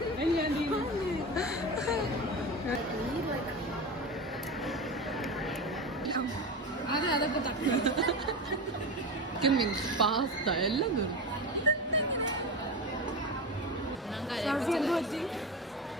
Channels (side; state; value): both; normal; correlation 0.24